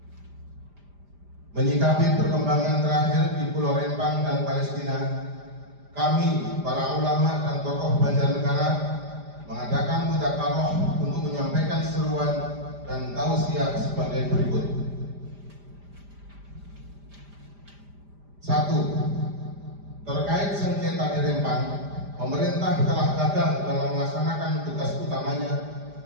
Menyikapi perkembangan terakhir di Pulau Rempang dan Palestina, kami, para ulama dan tokoh Banjarnegara, mengadakan mudzakarah untuk menyampaikan seruan dan tausiah sebagai berikut. 1. Terkait sengketa di Rempang, pemerintah telah gagal dalam melaksanakan tugas utamanya,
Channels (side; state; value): left; late; 5.0 ms